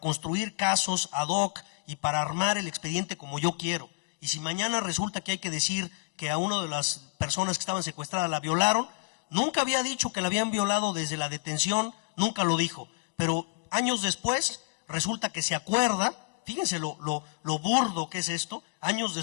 construir casos ad hoc y para armar el expediente como yo quiero. Y si mañana resulta que hay que decir que a una de las personas que estaban secuestradas la violaron, nunca había dicho que la habían violado desde la detención, nunca lo dijo. Pero años después resulta que se acuerda, fíjense lo burdo que es esto, años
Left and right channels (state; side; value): silent; right; digital silence